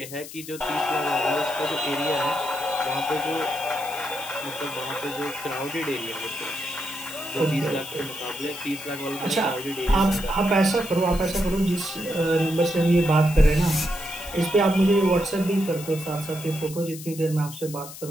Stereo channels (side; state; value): left; noise; hiss, 13 dB below the sound